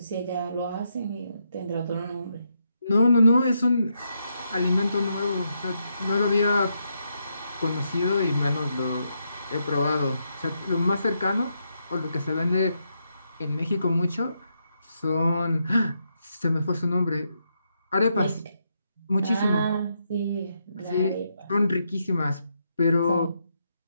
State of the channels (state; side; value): inverted; both; correlation -0.81